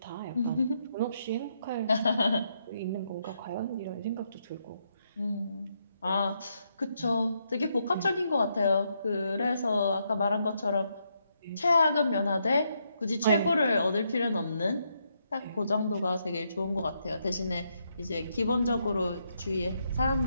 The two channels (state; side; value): inverted; both; correlation -0.78